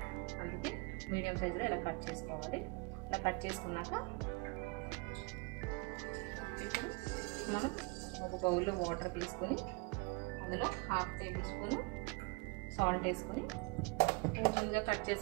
అందుకే మీడియం సైజులో ఇలా కట్ చేసుకోవాలి ఇలా కట్ చేసుకున్నాక ఇప్పుడు మనం ఒక బౌల్లో వాటర్ తీసుకుని అందులో హాఫ్ టేబుల్ స్పూన్ సాల్ట్ వేసుకొని కొంచెంగా కట్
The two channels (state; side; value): quieter; left; 28.8 dB